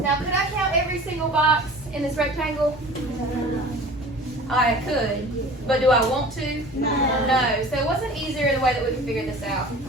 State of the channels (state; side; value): normal; both; correlation 0.42